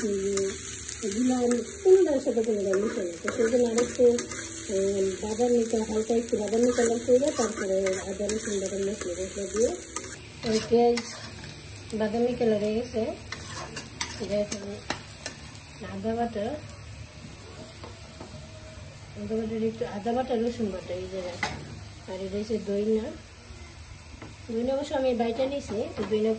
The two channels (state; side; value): identical; both; correlation 1.00